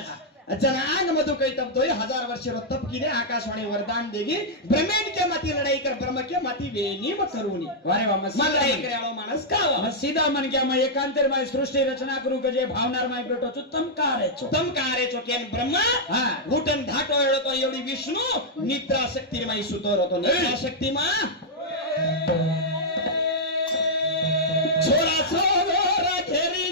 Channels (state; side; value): normal; both; correlation -0.07